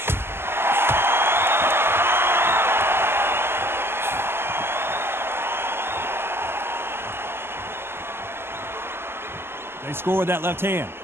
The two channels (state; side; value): late; left; 0.12 ms